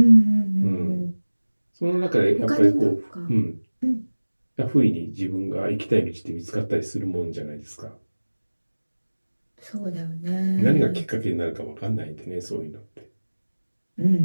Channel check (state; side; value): inverted; both; correlation -1.00